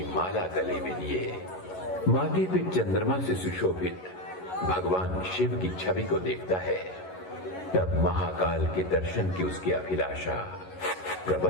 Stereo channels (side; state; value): right; late; 11 ms